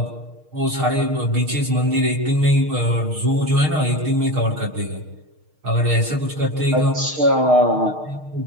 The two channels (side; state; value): left; late; 6.5 ms